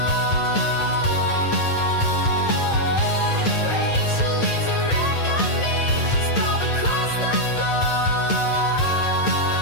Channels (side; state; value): right; late; 8.8 ms